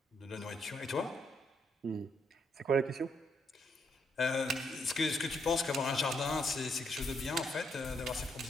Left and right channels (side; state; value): both; normal; correlation 0.75